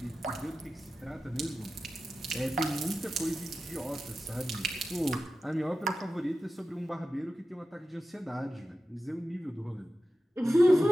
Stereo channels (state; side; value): normal; both; correlation 0.93